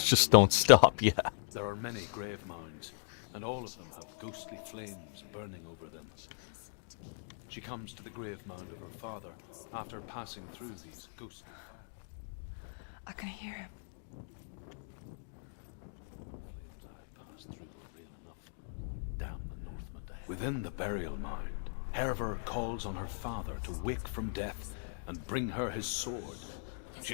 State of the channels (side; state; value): right; silent; digital silence